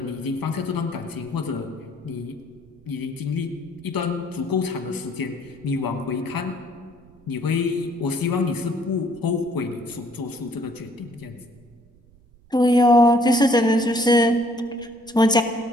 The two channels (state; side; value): noise; right; rumble, 28 dB below the sound